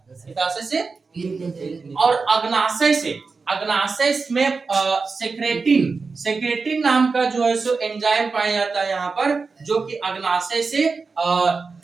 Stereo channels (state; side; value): quieter; left; 4.5 dB